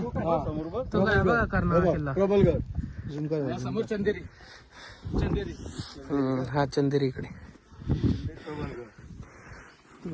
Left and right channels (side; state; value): both; identical; correlation 1.00